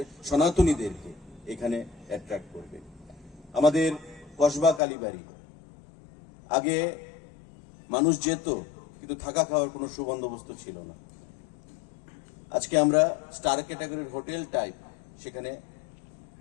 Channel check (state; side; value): drops out; right; at 4.8 s